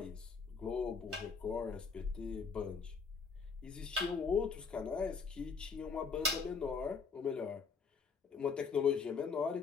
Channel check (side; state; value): right; quieter; 5.3 dB